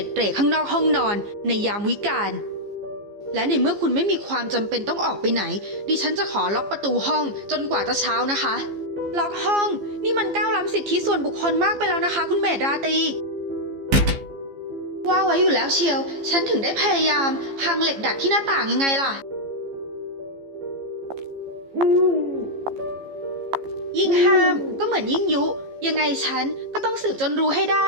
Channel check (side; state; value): left; late; 15 ms